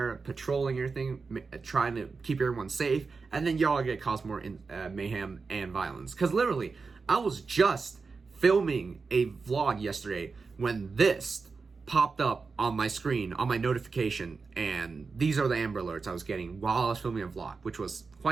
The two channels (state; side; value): quieter; left; 4.6 dB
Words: patrolling everything, trying to keep everyone safe, and then y'all are going to cause more mayhem and violence. Because literally, I was just filming a vlog yesterday when this popped up on my screen, on my notification, and these are the Amber Alerts I was getting while I was filming a vlog, which was